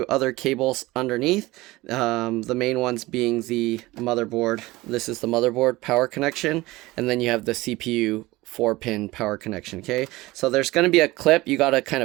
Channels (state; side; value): quieter; left; 19.8 dB